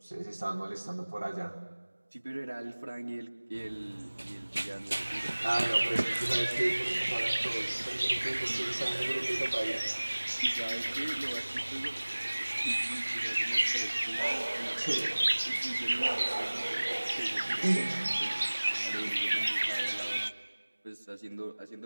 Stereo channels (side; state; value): both; inverted; correlation -1.00